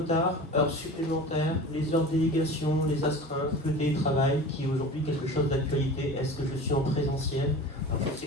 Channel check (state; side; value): normal; both; correlation 0.36